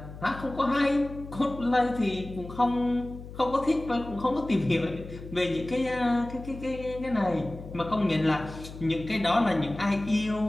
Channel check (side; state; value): left; noise; hum, 13 dB below the sound